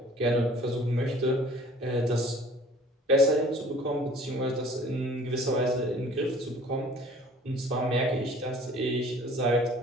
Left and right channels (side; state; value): both; normal; correlation 0.50